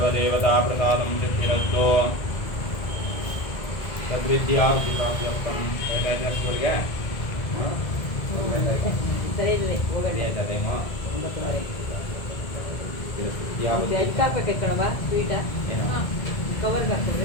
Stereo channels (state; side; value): late; right; 1.8 ms